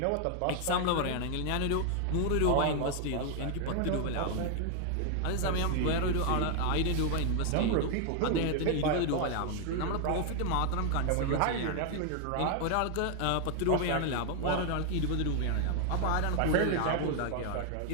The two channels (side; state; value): both; different; correlation 0.00